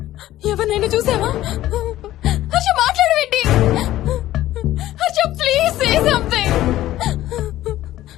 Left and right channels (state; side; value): quieter; right; 14.5 dB